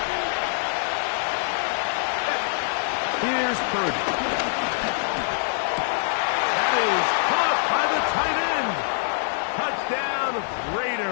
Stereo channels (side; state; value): right; silent; digital silence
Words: Here's Purdy. That is caught by the tight end. Touchdown,